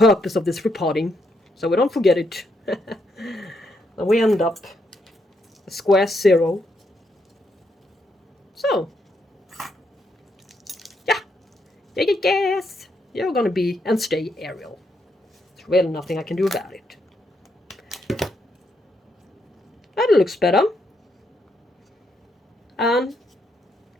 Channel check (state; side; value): normal; both; correlation 0.78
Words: of this repotting, so we don't forget it. And we end up a square 0. So, yeah, Yes, you're gonna be and stay aerial. There's really nothing I can do about it. That looks better. And